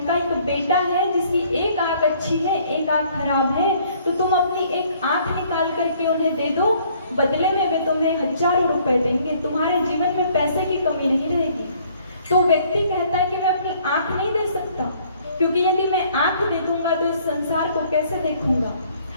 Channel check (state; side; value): inverted; both; correlation -0.61